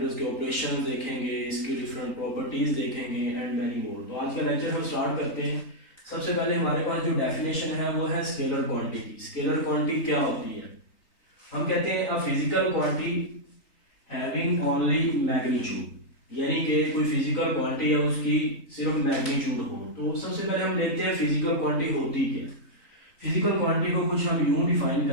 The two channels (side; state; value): right; late; 3.8 ms